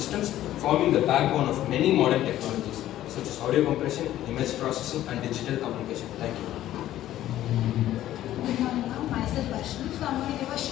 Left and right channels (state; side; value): quieter; right; 13.3 dB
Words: forming the backbone of many modern technologies such as audio compression, image processing, and digital communication. Thank you. Good morning, ma'am. Myself Vaishnavi. So I'm going to give a